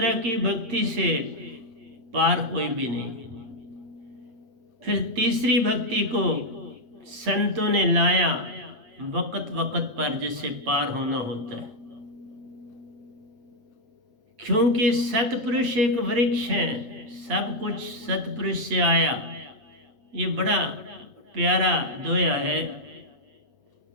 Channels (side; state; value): left; late; 8.0 ms